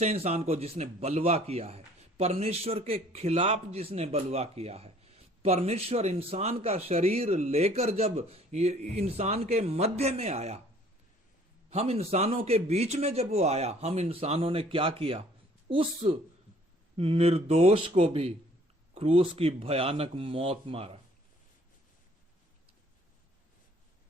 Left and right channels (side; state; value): both; normal; correlation 0.57